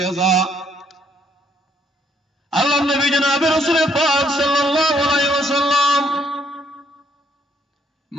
আল্লাহ নবী জনাবে রাসূল পাক সাল্লাল্লাহু আলাইহি ওয়াসাল্লাম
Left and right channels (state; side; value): normal; both; correlation 0.68